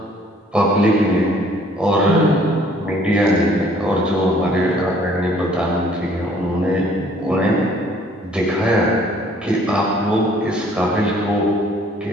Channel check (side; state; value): both; normal; correlation 0.58